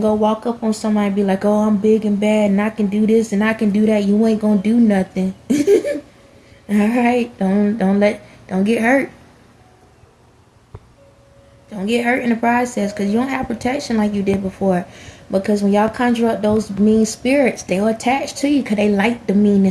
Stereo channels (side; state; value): both; identical; correlation 1.00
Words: go walk up on somebody and be like, oh, I'm big and bad and I can do this and I can do that. You ain't gonna do nothing. Alright? Don't get hurt. Don't get hurt in the process, because you don't have protection like you did before. Because when y'all conjure up those mean spirits, they'll attach to you because they like the